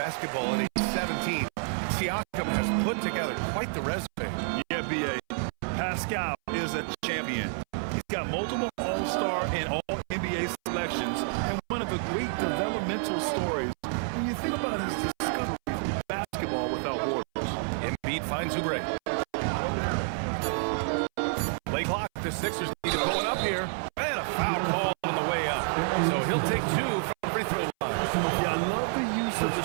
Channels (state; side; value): silent; left; 59 dB below the other